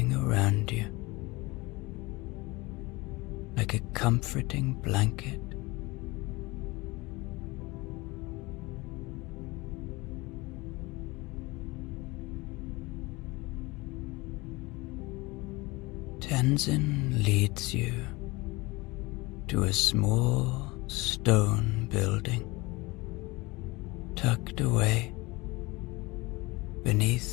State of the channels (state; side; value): quieter; right; 23.0 dB